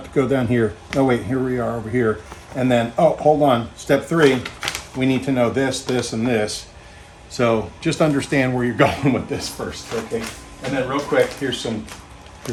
to go down here. Oh wait, here we are over here. And then, oh, hold on. Step 3, we need to know this, this, and this. So just understand where you're going with this first, okay? And then real quick, here's some,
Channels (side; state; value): both; identical; correlation 1.00